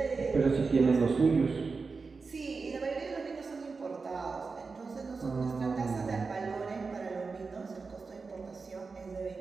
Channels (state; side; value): quieter; left; 4.5 dB